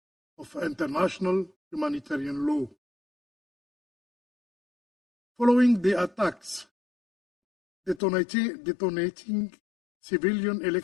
of international humanitarian law. Following the attacks detonating civilian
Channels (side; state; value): right; drops out; at 8.0 s